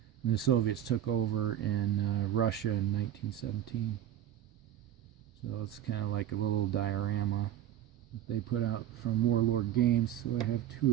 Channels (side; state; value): left; quieter; 11.2 dB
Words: when the Soviets took over in Russia in 1917. So it's kind of like a little diorama that they put out from Warlord Games. So I have